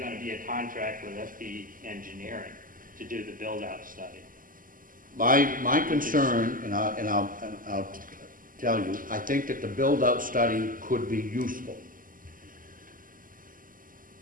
to be a contract with FB Engineering to do the build-out study. My concern, and I'll tell you, I think that the build-out study could be useful.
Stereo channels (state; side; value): late; left; 0.40 ms